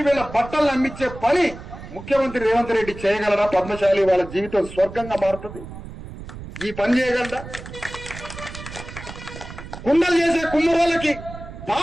వీళ్ళ బట్టలు అమ్మించే పని ముఖ్యమంత్రి రేవంత్ రెడ్డి చేయగలరా? పద్మశాలి వాళ్ళ జీవితం స్వర్గంగా మారుతుంది. ఈ పని చేయగలరా? కుండలు చేసే కుమ్మరోళ్ళకి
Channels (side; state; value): right; noise; rumble, 13 dB below the sound